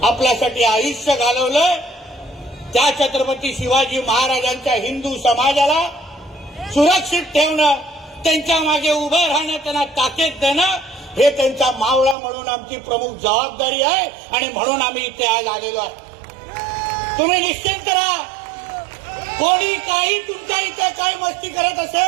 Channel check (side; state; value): left; drops out; at 12.2 s